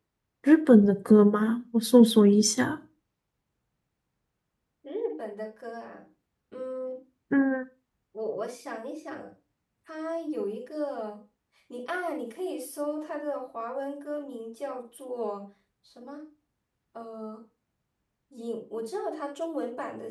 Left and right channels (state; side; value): identical; both; correlation 1.00